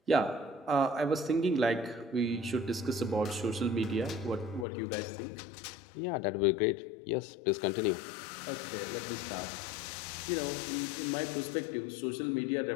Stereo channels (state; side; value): drops out; right; at 4.7 s